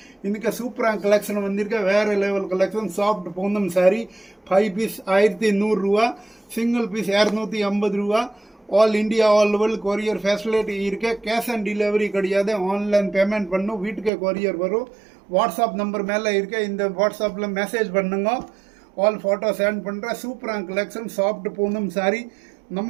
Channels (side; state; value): left; drops out; at 14.1 s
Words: இன்னைக்கு சூப்பரான கலெக்ஷன் வந்திருக்க வேற லெவல் கலெக்ஷன். சாஃப்ட் பூந்தும் சாரி 5 பீஸ் 1100 ரூபா, சிங்கிள் பீஸ் 250 ரூபா. All India all world courier facility இருக்கு. கேஷ் ஆன் டெலிவரி கிடையாது, ஆன்லைன் பேமெண்ட் பண்ணும், வீட்டுக்கு கொரியர் வரும். வாட்ஸ்அப் நம்பர் மேலே இருக்க, இந்த வாட்ஸ்அப்பில் மெசேஜ் பண்ணுங்க, ஆல் ஃபோட்டோ சென்ட் பண்ணுறேன். சூப்பரான கலெக்ஷன் சாஃப்ட் பூனம் சாரி.